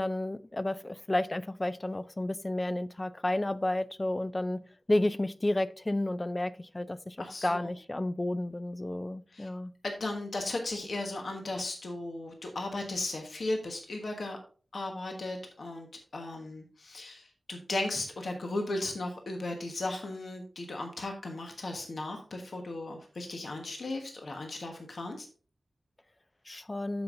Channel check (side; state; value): both; normal; correlation 0.97